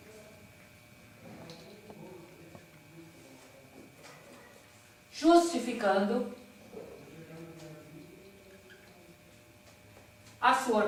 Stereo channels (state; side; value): identical; both; correlation 1.00